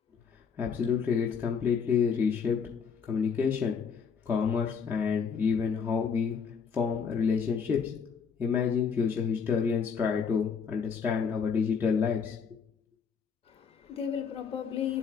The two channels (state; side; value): quieter; right; 6.3 dB